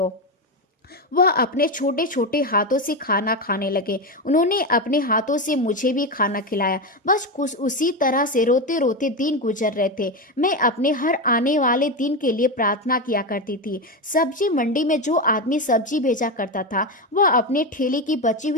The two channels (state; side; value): normal; both; correlation 0.14